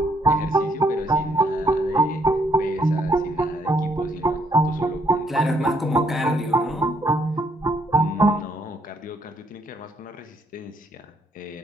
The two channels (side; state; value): both; normal; correlation 0.70